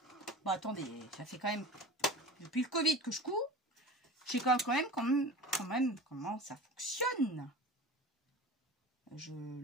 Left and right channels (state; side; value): normal; both; correlation 0.36